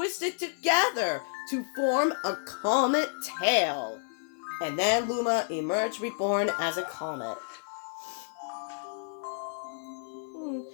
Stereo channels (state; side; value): silent; right; 58 dB below the other